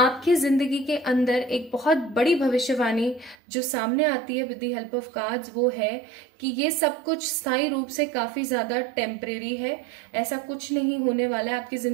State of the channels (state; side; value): drops out; left; at 3.4 s